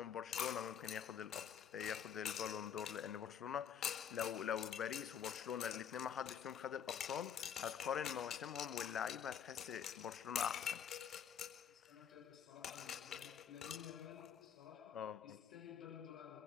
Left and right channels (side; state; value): right; quieter; 8.3 dB